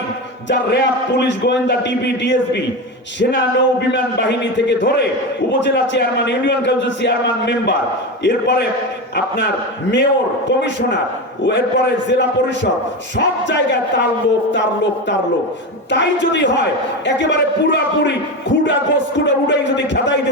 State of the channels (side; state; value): both; normal; correlation 0.20